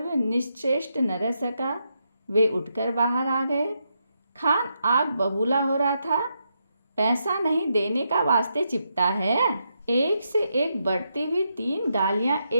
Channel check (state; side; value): inverted; both; correlation -0.82